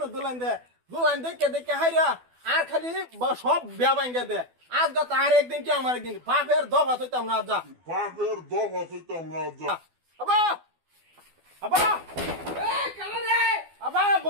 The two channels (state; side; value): late; left; 12 ms